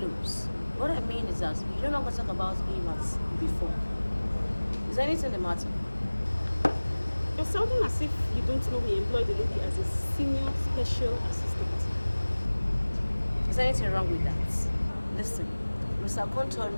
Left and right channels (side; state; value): both; inverted; correlation -1.00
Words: What I mean is that you no longer talk about him as before. Is there anything the matter? You're sounding as if you don't know he employed the lady as a senior special assistant. Is there anything wrong with that? Listen, Mr. Okonkwo told